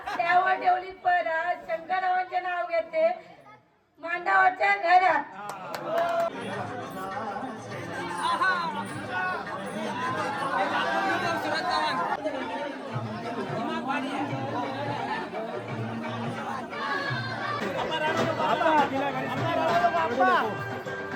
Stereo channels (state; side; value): identical; both; correlation 1.00